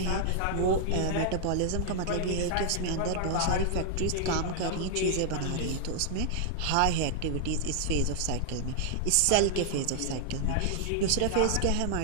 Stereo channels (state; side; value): different; both; correlation 0.00